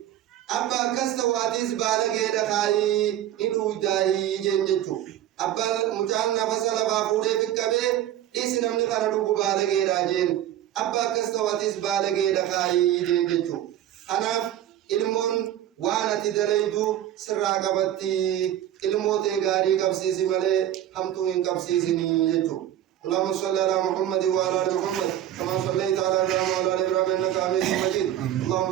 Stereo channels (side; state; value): left; quieter; 12.0 dB